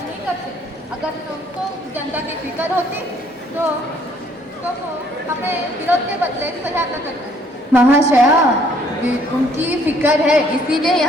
करते। अगर उनको जनता की फिक्र होती तो वो हमें विरोध के बदले सहायता करते। महाशया, उनकी फिक्र है इसीलिए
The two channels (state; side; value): normal; both; correlation 0.63